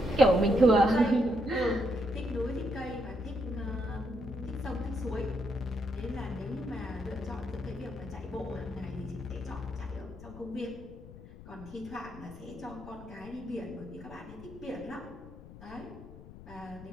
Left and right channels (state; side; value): noise; left; rumble, 16 dB below the sound